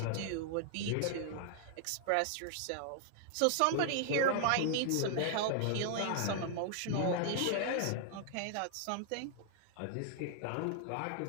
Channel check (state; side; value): different; both; correlation 0.00